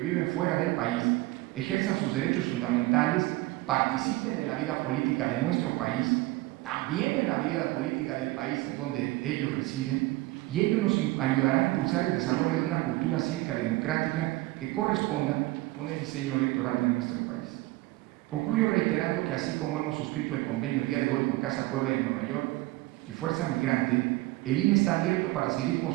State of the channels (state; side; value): quieter; left; 19.6 dB